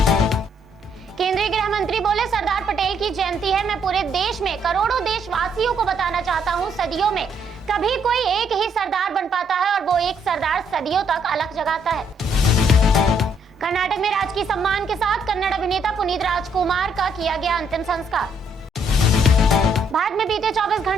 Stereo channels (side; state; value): both; normal; correlation 0.70